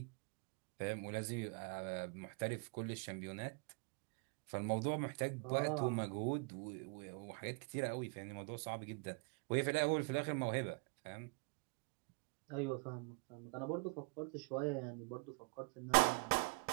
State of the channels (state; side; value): quieter; left; 28.2 dB